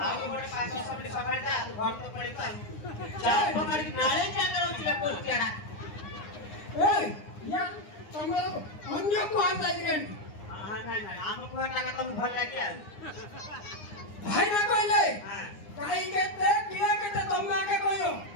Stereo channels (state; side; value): late; right; 9.7 ms